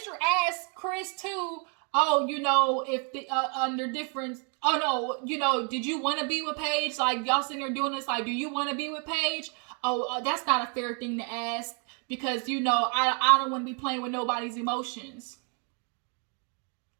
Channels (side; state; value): left; quieter; 38.4 dB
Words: asked Chris too, if the, under different, did you want to be with Paige? Like, y'all sitting there doing this, like, do you want to be with Paige? That's not a fair thing to ask because, I don't want to be playing with nobody's emotions.